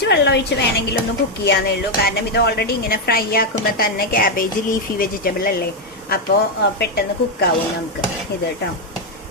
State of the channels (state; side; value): normal; both; correlation 0.03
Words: വെള്ളം ഒഴിച്ച് വേണമെങ്കിൽ ഒന്ന് കുക്ക് ചെയ്യാന്നേ ഉള്ളൂ. കാരണം ഇത് ഓൾറെഡി ഇങ്ങനെ ഫ്രൈ ആക്കുമ്പോൾ തന്നെ ക്യാബേജ് ലീഫി വെജിറ്റബിൾ അല്ലേ, അപ്പോൾ പെട്ടെന്ന് കുക്കാവും നമുക്ക് ഇത് കേട്ടോ.